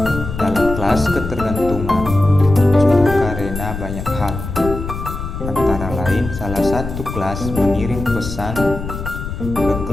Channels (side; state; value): left; noise; rumble, 7 dB below the sound